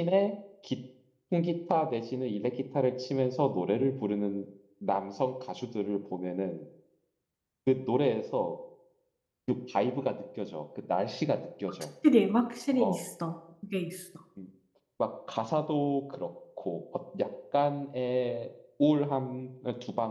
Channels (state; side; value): identical; both; correlation 1.00